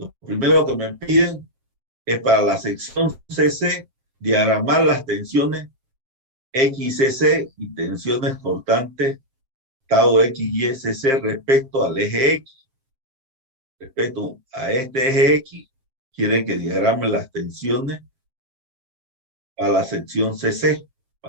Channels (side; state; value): left; late; 7.6 ms